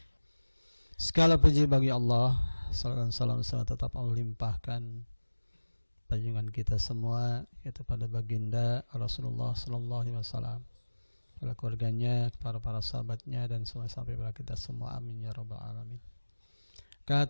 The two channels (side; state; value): both; inverted; correlation -1.00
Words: Segala puji bagi Allah, salam tetap Allah limpahkan junjungan kita semua, yaitu pada baginda Rasulullah sallallahu alaihi wasallam, pada keluarganya, para sahabatnya, dan semua sampai pada kita semua. Amin ya rabbal alamin.